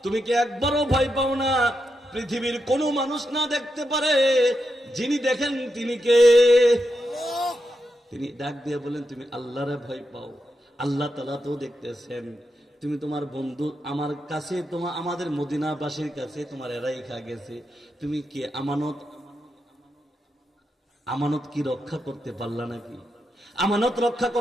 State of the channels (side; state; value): both; normal; correlation 0.85